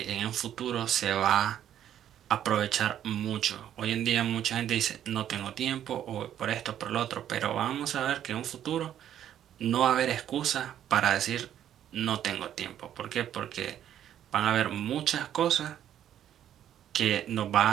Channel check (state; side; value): quieter; left; 10.7 dB